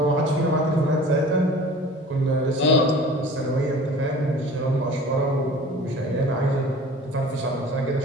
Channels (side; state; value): both; normal; correlation 0.43